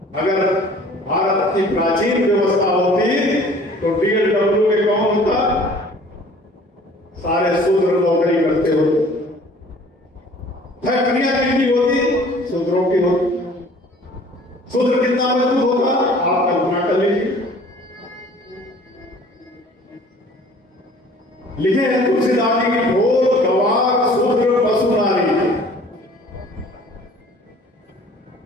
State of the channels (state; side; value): normal; both; correlation 0.51